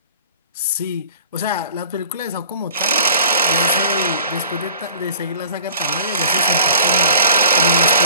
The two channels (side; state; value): both; inverted; correlation -0.48